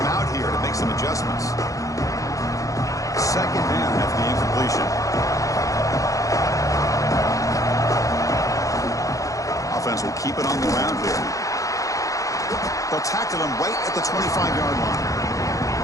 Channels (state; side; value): late; right; 0.16 ms